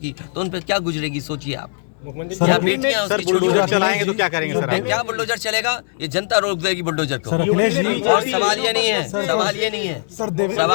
की, तो उन पर क्या गुजरेगी? सोचिए आप। सर, बुलडोजर चलाएंगे तो क्या करेंगे सर? क्या बुलडोजर चलेगा? ये जनता रोक देगी बुलडोजर को। और सवाल ये नहीं है, सवाल ये नहीं है,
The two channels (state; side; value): silent; right; 66 dB below the other